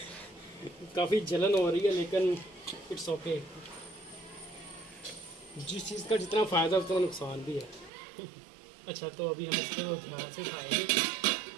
काफ़ी जलन हो रही है, लेकिन इट्स ओके। जिस चीज़ का जितना फ़ायदा उतना नुकसान भी है। अच्छा, तो अभी हम इसको ध्यान से खाएंगे।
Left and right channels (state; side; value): drops out; left; at 7.9 s